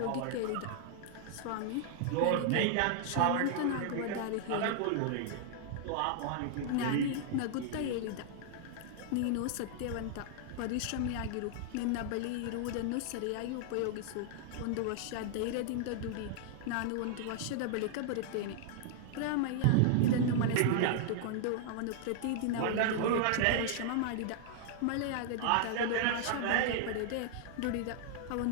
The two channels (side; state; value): both; different; correlation 0.00